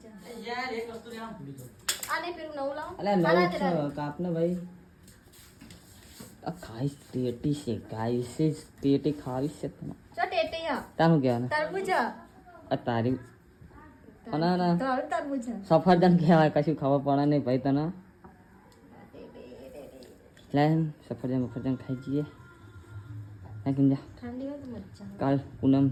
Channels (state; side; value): identical; both; correlation 1.00